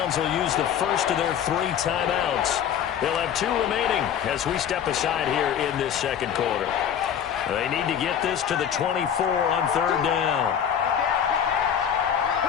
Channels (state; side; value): quieter; right; 8.8 dB